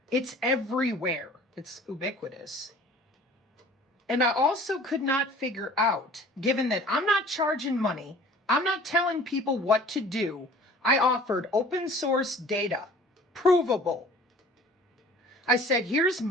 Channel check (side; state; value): both; normal; correlation 0.47